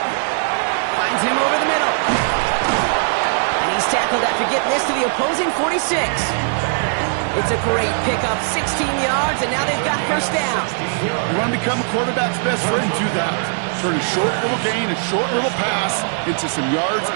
Finds him over the middle. And he's tackled after getting getting this to the opposing 46. It's a great pickup, 16 yards, and now they've got first down. You want to become a quarterback's best friend, do that. Turn a short little gain, a short little pass into some yards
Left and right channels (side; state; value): left; silent; digital silence